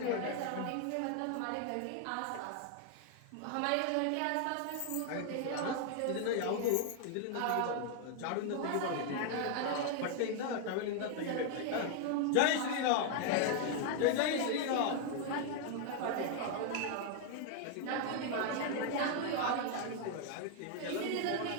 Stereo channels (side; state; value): both; different; correlation 0.00